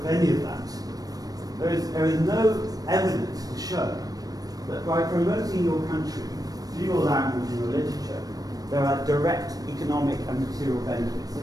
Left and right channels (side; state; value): left; late; 0.18 ms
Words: any of that. There is no evidence to show that by promoting your country through your language and your literature, there are direct economic and material benefits.